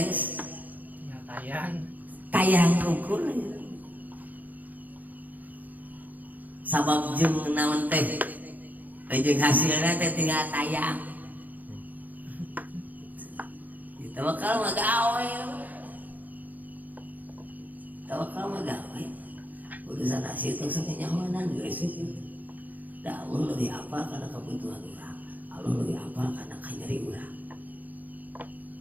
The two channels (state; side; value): late; left; 0.081 ms